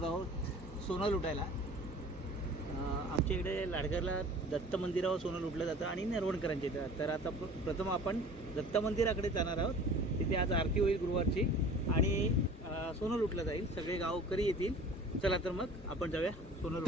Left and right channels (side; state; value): both; normal; correlation 0.44